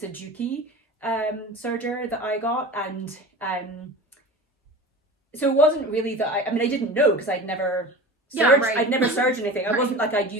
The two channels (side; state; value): both; normal; correlation 0.34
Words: a Juki serger that I got, and so it wasn't really that I mean, I didn't know, because I'd never serged, I'd never serged anything. I wasn't like I'd